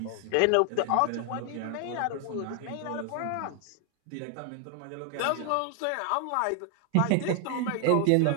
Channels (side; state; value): both; different; correlation 0.00